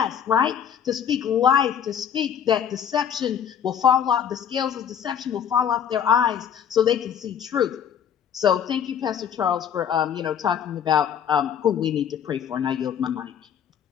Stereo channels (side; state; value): right; quieter; 8.6 dB